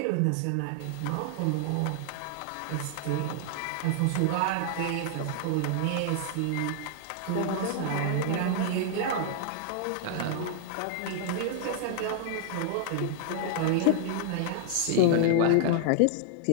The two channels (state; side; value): different; both; correlation -0.01